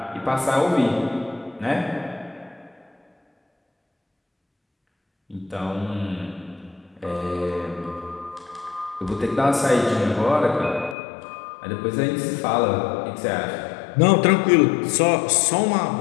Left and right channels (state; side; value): drops out; right; at 11.0 s